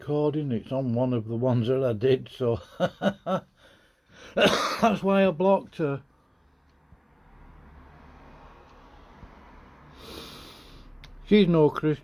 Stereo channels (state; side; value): identical; both; correlation 1.00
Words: It's on one of the ones that I did, so that's why I blocked her. She's no